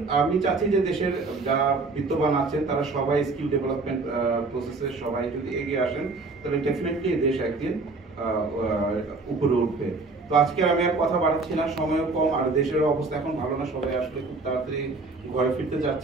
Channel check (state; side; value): quieter; left; 3.7 dB